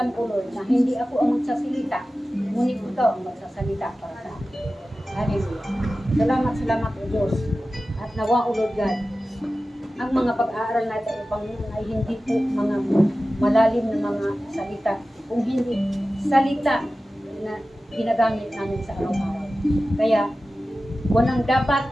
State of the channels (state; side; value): normal; both; correlation 0.95